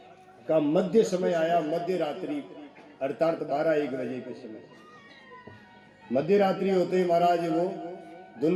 का मध्य समय आया। मध्य रात्रि अर्थात 12-1 बजे के समय, मध्य रात्रि होते ही महाराज वो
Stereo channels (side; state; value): both; identical; correlation 1.00